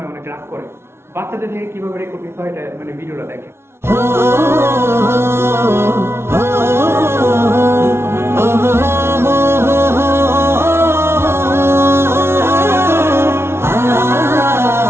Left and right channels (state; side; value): late; left; 0.12 ms